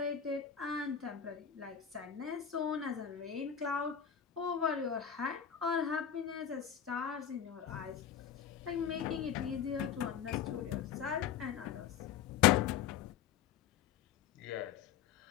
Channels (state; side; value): quieter; right; 8.6 dB